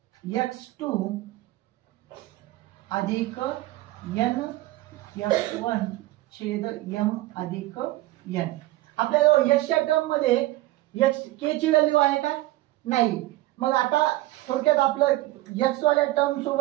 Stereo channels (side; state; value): left; quieter; 17.6 dB